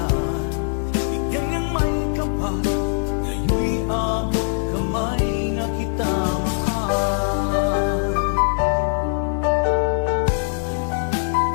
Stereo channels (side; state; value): right; silent; digital silence